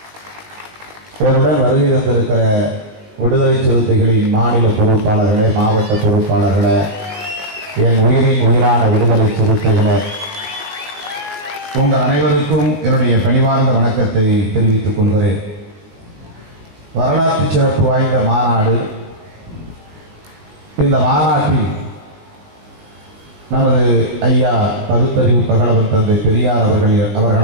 என்னுடன் வருகை தந்திருக்கிற விடுதலை சிறுத்தைகளின் மாநில பொறுப்பாளர்களே, மாவட்ட பொறுப்பாளர்களே, என் உயிரின் உயிரான விடுதலை சிறுத்தைகளே, உங்கள் அனைவருக்கும் என்னுடைய பணிவார்ந்த வணக்கத்தை தெரிவித்துக் கொள்கிறேன். வரலாற்று சிறப்பு வாய்ந்த மாநாடு. இந்த மாநாட்டில் நமது ஐயா பகுத்தறிவு பகலவன் தந்தை பெரியார்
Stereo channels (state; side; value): late; left; 19 ms